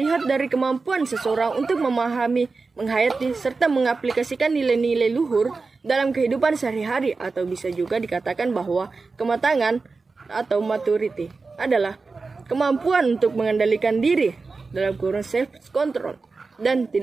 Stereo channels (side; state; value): left; quieter; 4.1 dB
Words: dari kemampuan seseorang untuk memahami, menghayati, serta mengaplikasikan nilai-nilai luhur dalam kehidupan sehari-hari, atau bisa juga dikatakan bahwa kematangan atau maturity adalah kemampuan untuk mengendalikan diri dalam kurun self-control dan